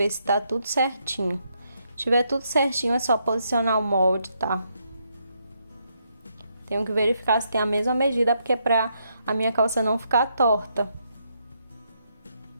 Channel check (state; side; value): inverted; both; correlation -0.77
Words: se tá tudo certinho. Se tiver tudo certinho, é só posicionar o molde, tá? Tenho que verificar se tem a mesma medida, porque é pra a minha calça não ficar torta.